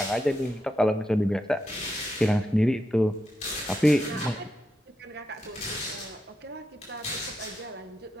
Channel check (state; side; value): normal; both; correlation 0.85